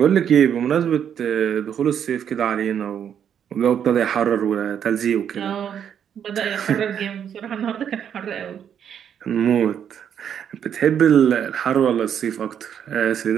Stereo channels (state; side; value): quieter; left; 8.7 dB